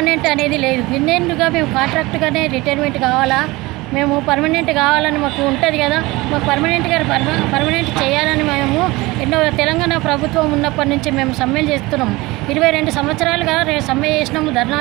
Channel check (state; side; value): quieter; left; 21.5 dB